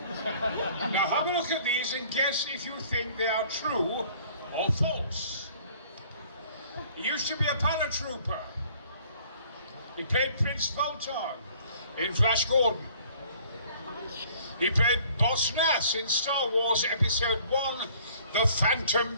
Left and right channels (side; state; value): both; inverted; correlation -0.55